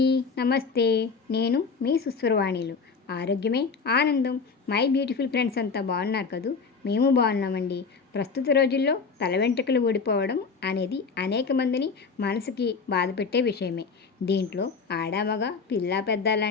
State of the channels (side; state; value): right; quieter; 5.0 dB